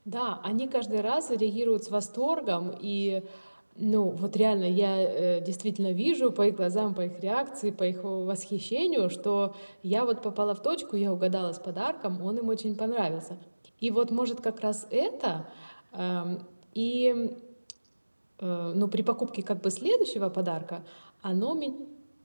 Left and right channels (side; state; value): both; inverted; correlation -1.00